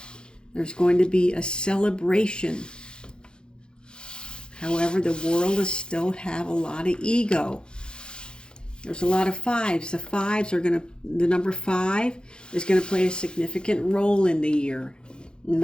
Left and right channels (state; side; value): late; right; 0.049 ms